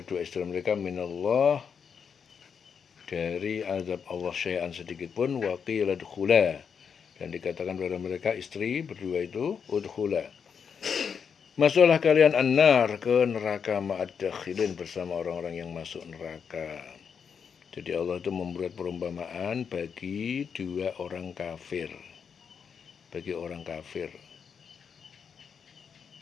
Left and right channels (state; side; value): quieter; right; 6.7 dB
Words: istri mereka, minallah, dari azab Allah, syai'an, sedikit pun. Wa qila udkhula, dan dikatakan kepada mereka istri berdua itu, udkhula, masuklah kalian an-nar, ke neraka, ma'ad dakhilin, bersama orang-orang yang masuk neraka. Jadi Allah itu membuat perumpamaan bagi dua orang kafir, bagi orang kafir,